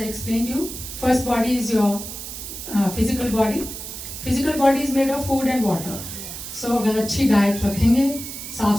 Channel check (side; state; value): right; noise; hiss, 9 dB below the sound